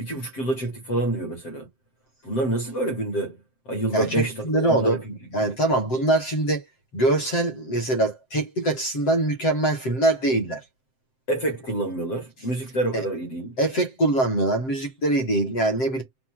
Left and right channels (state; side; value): late; right; 7.7 ms